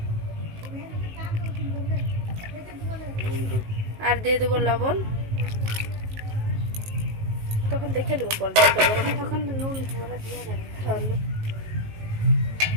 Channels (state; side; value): late; left; 19 ms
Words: আর দিয়ে দেব লবণ। তখন দেখে নেবো জলটা গরম, তখন নুন ভরা দিয়ে যাবে।